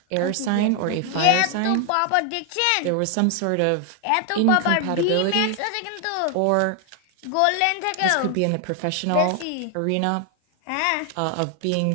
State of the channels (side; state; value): both; different; correlation 0.00